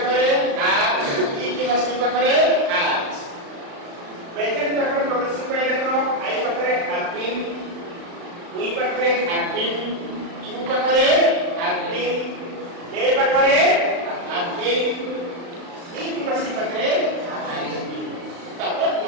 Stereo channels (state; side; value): late; left; 35 ms